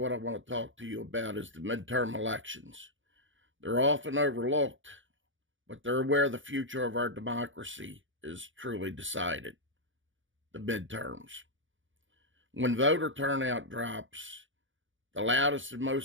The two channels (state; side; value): late; left; 0.56 ms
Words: I want to talk to you about is the midterm elections. They're often overlooked, but they're where the future of our democracy is truly decided. The midterms. When voter turnout drops, the loudest and